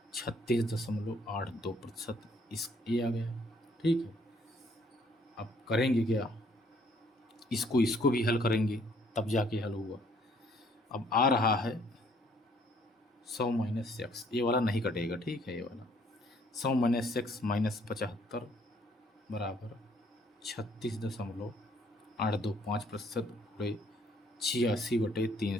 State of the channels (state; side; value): normal; both; correlation 0.63